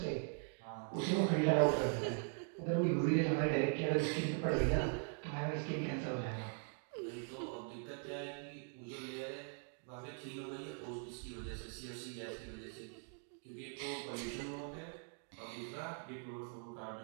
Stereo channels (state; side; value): silent; left; 50 dB below the other